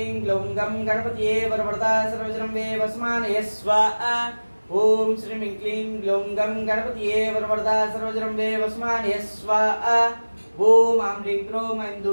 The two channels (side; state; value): both; inverted; correlation -1.00